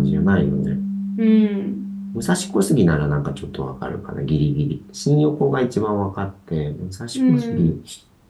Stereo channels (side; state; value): both; identical; correlation 1.00